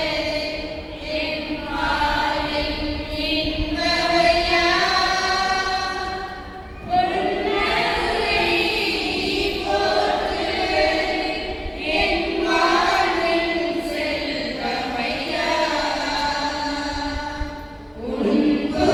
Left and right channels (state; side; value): identical; both; correlation 1.00